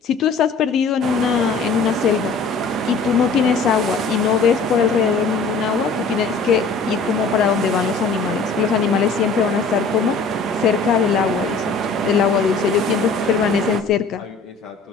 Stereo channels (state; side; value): quieter; right; 4.0 dB